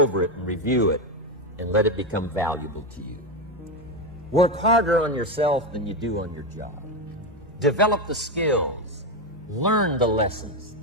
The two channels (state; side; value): normal; both; correlation 0.11